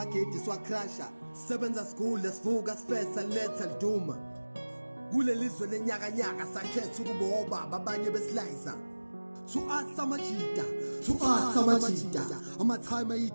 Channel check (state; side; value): inverted; both; correlation -1.00